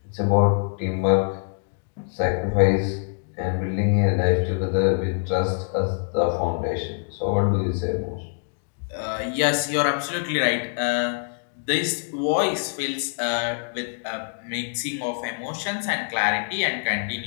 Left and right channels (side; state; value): right; silent; digital silence